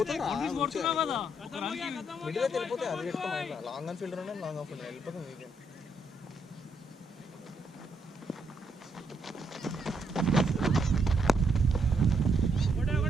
కొడుతున్నావు కదా మిడిల్ అయితే వెళ్ళిపోతే అది పెట్టుకోవాలి. Long on fielder long off fielder వెళ్ళిపోతాం. Weekend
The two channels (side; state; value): both; normal; correlation 0.75